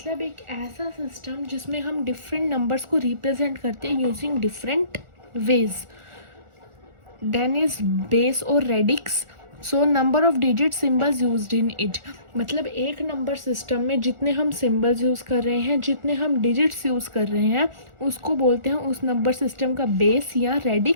एक ऐसा system जिसमें हम different numbers को represent करते हैं using different ways. Then is base और radix. So number of digit symbols used in it, मतलब एक नंबर सिस्टम में जितने हम सिम्बल्स यूज़ कर रहे हैं, जितने हम डिजिट्स यूज़ कर रहे हैं, उसको बोलते हैं उस नंबर सिस्टम का बेस या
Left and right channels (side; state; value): left; late; 1.4 ms